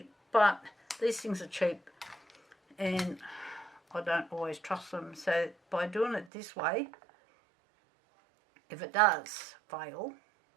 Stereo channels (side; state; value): left; drops out; at 6.3 s